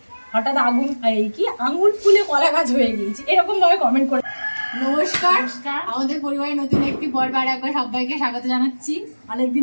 হঠাৎ আগুন এই কি আঙুল ফুলে কলা গাছ হয়ে গিয়েছে এরকম ভাবে কমেন্ট করে। নমস্কার, আমাদের পরিবারের নতুন একটি পর্বে একবার সবাইকে স্বাগত জানাচ্ছি।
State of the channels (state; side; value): inverted; both; correlation -1.00